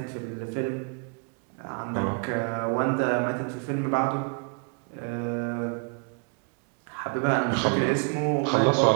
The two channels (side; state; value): left; quieter; 39.0 dB